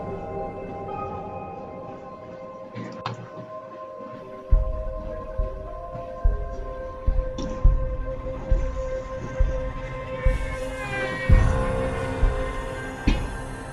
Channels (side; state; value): both; identical; correlation 1.00